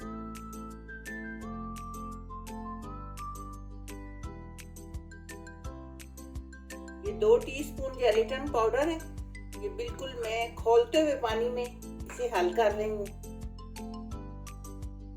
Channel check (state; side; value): identical; both; correlation 1.00